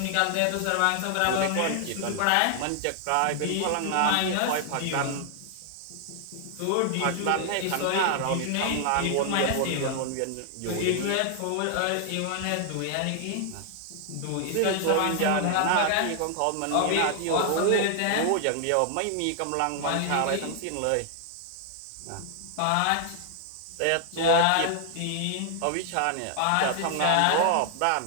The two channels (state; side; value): different; both; correlation 0.00